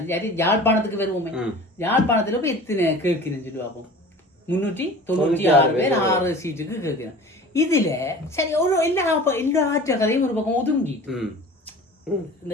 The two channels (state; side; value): normal; both; correlation 0.41